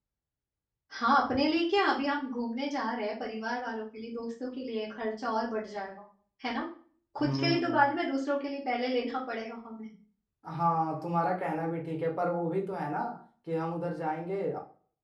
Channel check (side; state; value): both; identical; correlation 1.00